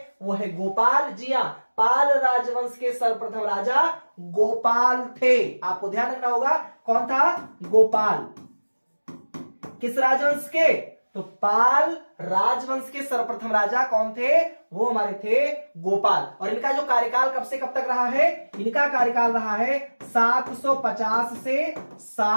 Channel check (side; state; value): both; inverted; correlation -1.00